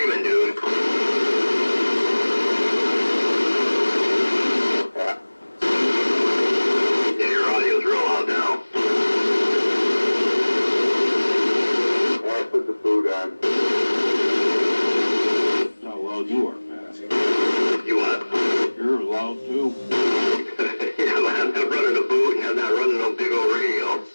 dude. Yeah, your audio's real loud now. Yeah, I put the food on. That's how loud you are, Pat. You what? You're loud too. Yeah, but I'm not running a boot and I'm not running no big old radio.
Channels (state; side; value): inverted; both; correlation -1.00